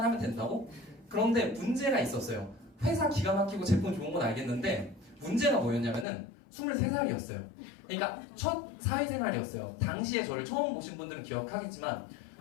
된다고? 그런데 문제가 있었어요. 회사 기가 막히고 제품 좋은 건 알겠는데 문제가 뭐였냐면은 23살이었어요. 그러니까 첫 사회생활이었어요. 당시에 저를 처음 보신 분들은 기억하겠지만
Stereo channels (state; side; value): drops out; right; at 6.1 s